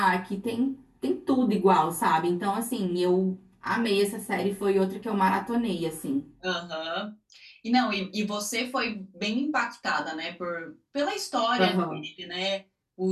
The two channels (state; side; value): identical; both; correlation 1.00